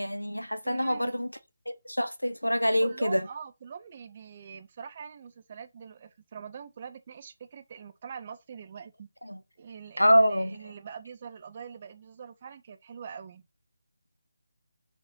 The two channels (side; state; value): both; inverted; correlation -0.98